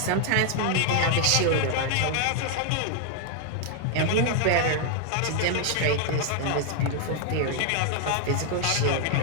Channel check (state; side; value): different; both; correlation 0.00